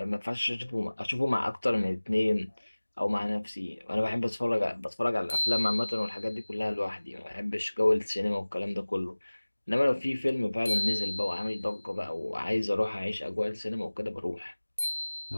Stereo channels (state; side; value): inverted; both; correlation -1.00